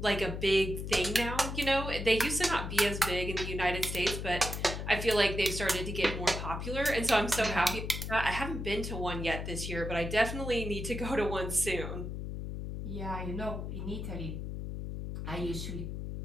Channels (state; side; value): noise; left; hum, 5 dB below the sound